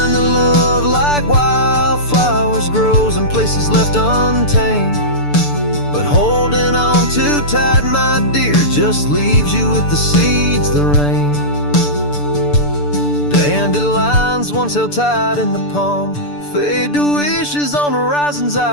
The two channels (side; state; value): right; late; 6.8 ms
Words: that love like wildflowers grows in places left untamed, but holding on too tight, my dear, just leaves you with the seeds that rain. Dandelions once held tight in the palm fade to wishes on horizons